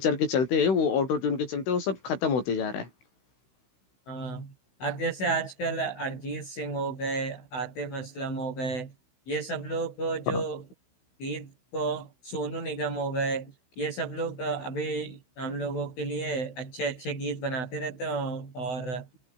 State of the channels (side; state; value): right; late; 16 ms